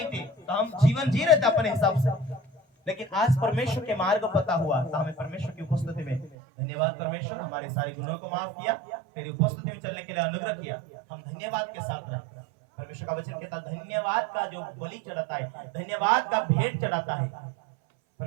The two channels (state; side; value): drops out; left; at 6.4 s